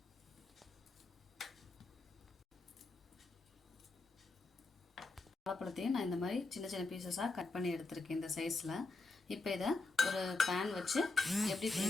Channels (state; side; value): quieter; right; 3.4 dB